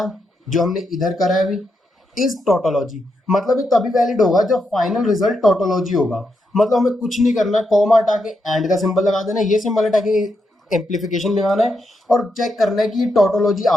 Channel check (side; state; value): both; normal; correlation 0.83